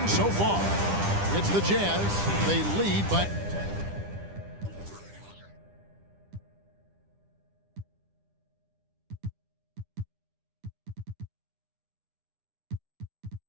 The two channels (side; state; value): left; late; 10 ms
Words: so far. It's the Jazz. They lead by...